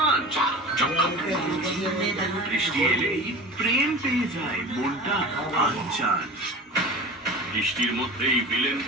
চকচক। বৃষ্টি এলেই প্রেম পেয়ে যায় মনটা আনচান। বৃষ্টির মধ্যেই ভিলেন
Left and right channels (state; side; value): normal; both; correlation 0.34